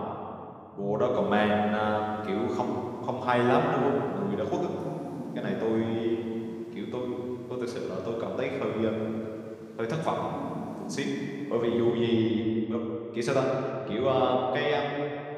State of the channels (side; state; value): both; identical; correlation 1.00